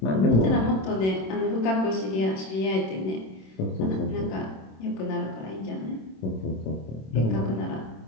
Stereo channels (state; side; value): late; right; 26 ms